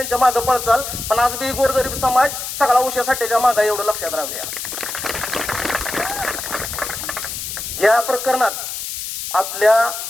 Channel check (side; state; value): left; noise; hiss, 6 dB below the sound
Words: मागे पळचाल, पण आज बी गोरगरीब समाज सगळा उषा साठेच्या मागे, एवढं लक्षात राहू द्या. या प्रकरणात आपल्या